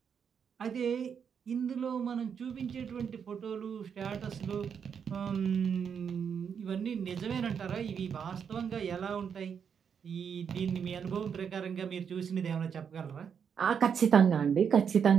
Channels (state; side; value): quieter; left; 7.2 dB